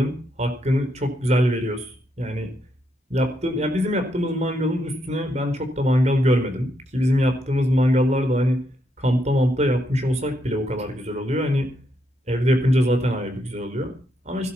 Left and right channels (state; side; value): normal; both; correlation 0.78